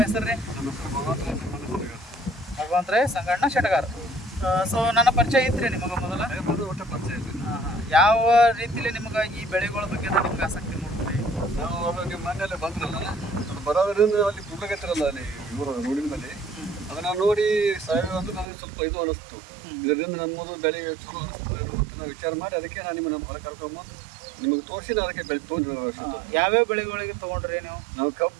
ಹೆಸರು ರೀ? ಭಗವಂತರೇ ಸಂಗಣ್ಣ ಶೆಟಗಾರ್. ಸೊ ನನ್ನ ಪರಿಚಯ ಇತ್ತು ನಿಮಗೆ ಮೊದಲ? ಒಟ್ಟು ಪರಿಚಯ ಇದೆ. ಯಾವ ರೀತಿಯಲ್ಲಿ ನಿಮಗೆ ಈ ಬೆಳೆಗಳ ಬಗ್ಗೆ ನಿಮ್ಗೆ ಆಸಕ್ತಿ ಮೂಡ್ತೀರಿ? ನಾವು ಅವಾಗ ನಿಮ್ಮ ಮನೆಯಲ್ಲೇ ಬಂದ್ರಲ್ಲ, ಅದು ಬರೋದ್ರಿಂದ ಅಲ್ಲಿ ಗುಡ್ಲಗತ್ತಿರಲ್ಲ ಅಲ್ಲಿ ಇವರು ರೋಡಿನ ಮೇಲೆ, ಅದನ್ನು ನೋಡಿ ಸಾವಯವ ಅಂದ್ರೆ ನನಗೆ ಸ್ವಲ್ಪ ಇದು ಅನ್ನಿಸ್ತು. ಇದರಿಂದ ನಮ್ಮದು ಬೆಳೆ ಚಲೋ ಅನ್ನಿಸ್ತದೆ ಅಂತ ನಾವು ವಿಚಾರ ಮಾಡಿ ಅದಕ್ಕೆ ನಾನು ನಿಮ್ಮ ಹೊರ ಕರ್ಕೊಂಡು ನಿಮಗೆ ತೋರಿಸಿ ನಾನು ಅದಕ್ಕೆ ಬೆಳೆ ತೊಗೊಂಡು. ಯಾವ್ಯಾವ ಬೆಳೆಗಳಿಗೆ ತೊಗೊಂಡ್ರಿ ನೀವು? ನಾವು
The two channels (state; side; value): drops out; left; at 18.4 s